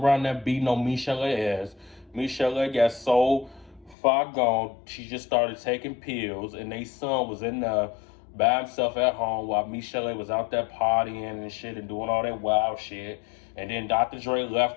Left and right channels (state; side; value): drops out; right; at 4.0 s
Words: that beating on Michel'le ass. Michel'le got so far gone, she just started taking pills, and their son was in there by himself at home while Michel'le was out there partying and shit and doing all that wild shit. And then Dr. Dre